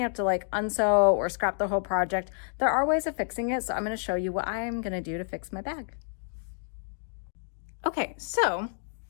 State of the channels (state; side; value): silent; right; digital silence